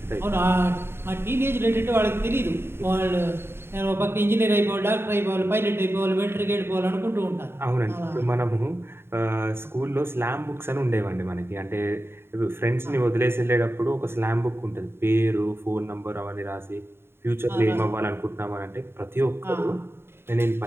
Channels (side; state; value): left; late; 0.11 ms